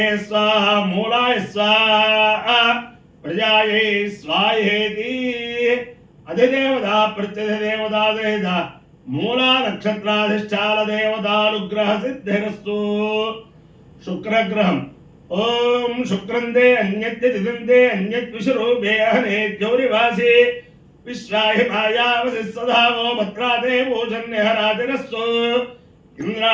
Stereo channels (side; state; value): both; identical; correlation 1.00